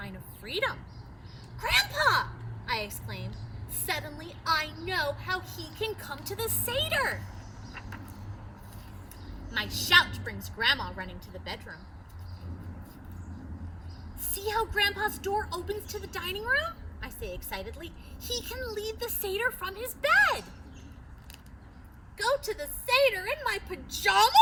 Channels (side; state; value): both; identical; correlation 1.00